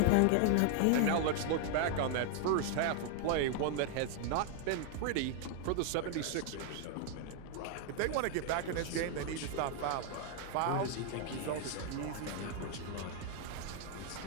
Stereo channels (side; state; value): both; different; correlation 0.00